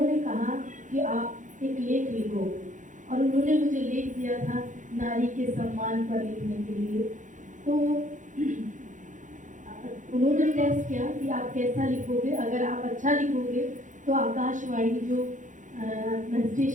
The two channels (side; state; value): left; late; 0.37 ms